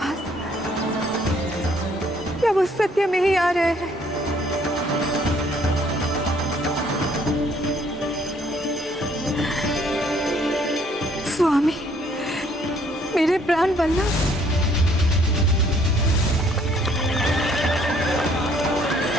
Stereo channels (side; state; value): both; normal; correlation 0.63